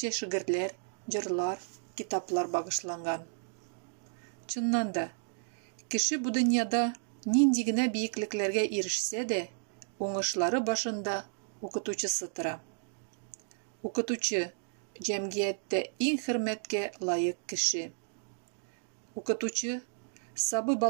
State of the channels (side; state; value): left; silent; digital silence